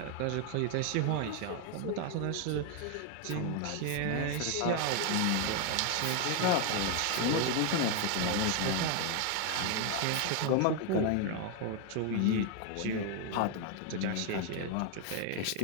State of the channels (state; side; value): different; both; correlation 0.01